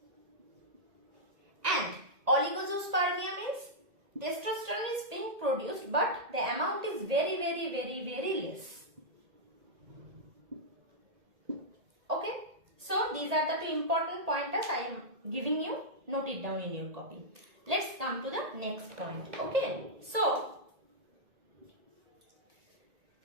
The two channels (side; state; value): left; late; 1.8 ms